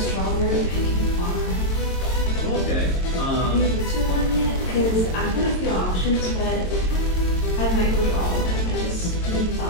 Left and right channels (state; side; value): late; right; 22 ms